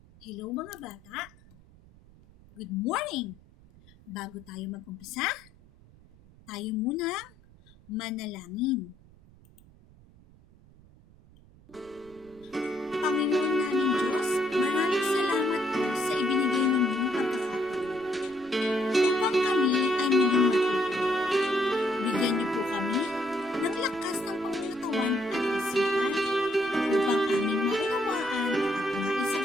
Hello mga bata! Good morning! Bago tayo mag-umpisa, tayo muna manalangin. Panginoon namin Diyos, maraming salamat po sa ibinigay ninyong pagkakataon upang kami ay muling matuto. Bigyan niyo po kami ng lakas ng pangunatawan at isipan upang aming maunawaan at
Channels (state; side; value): noise; right; rumble, 25 dB below the sound